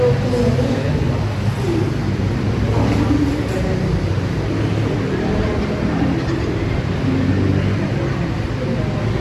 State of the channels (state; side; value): identical; both; correlation 1.00